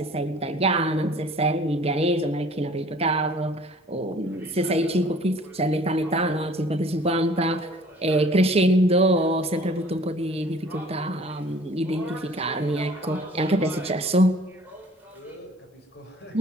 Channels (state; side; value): normal; both; correlation 0.51